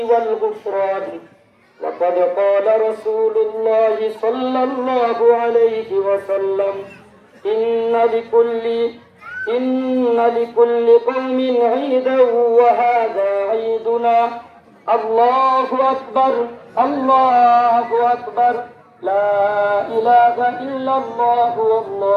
وقد قال رسول الله صلى الله عليه وسلم إن لكل قوم عيدا وهذا عيدنا الله أكبر الله أكبر لا إله إلا الله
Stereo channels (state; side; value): identical; both; correlation 1.00